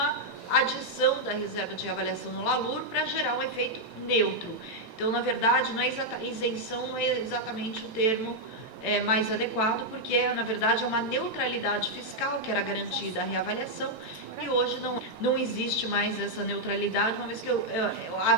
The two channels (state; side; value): late; right; 9.3 ms